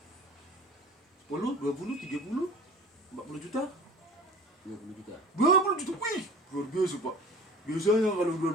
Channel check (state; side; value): normal; both; correlation 0.42